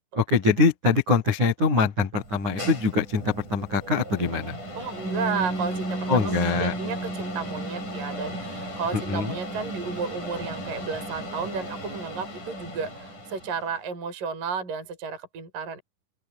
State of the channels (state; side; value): late; left; 10 ms